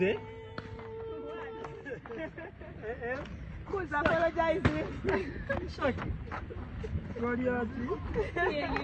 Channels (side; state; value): both; identical; correlation 1.00